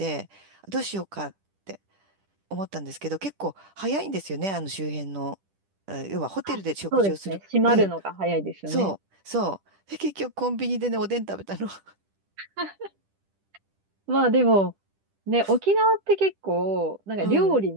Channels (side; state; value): left; late; 10 ms